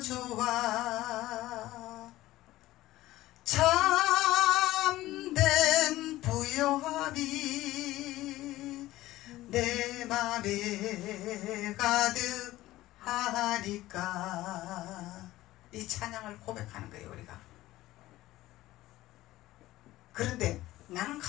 좋아, 참된 부요함이 내 맘에 가득하니까, 이 찬양을 고백하는 거예요, 우리가. 그런데 나는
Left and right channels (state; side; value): quieter; right; 16.4 dB